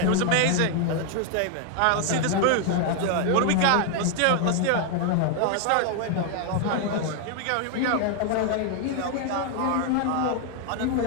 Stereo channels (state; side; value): different; both; correlation 0.00